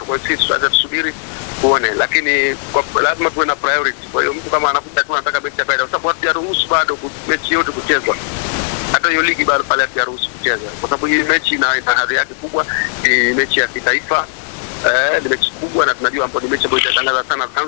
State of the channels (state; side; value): silent; right; digital silence